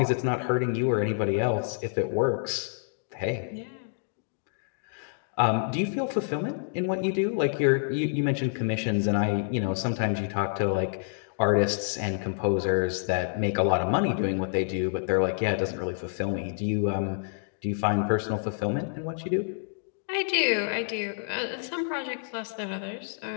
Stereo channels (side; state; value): right; silent; digital silence